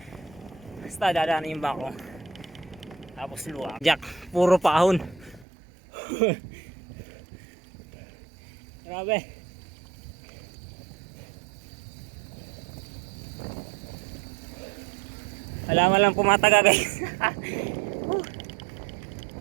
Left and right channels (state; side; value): drops out; left; at 5.5 s